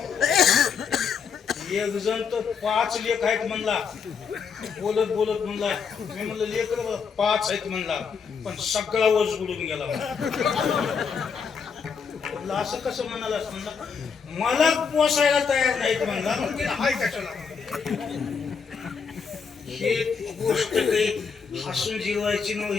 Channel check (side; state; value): right; quieter; 6.1 dB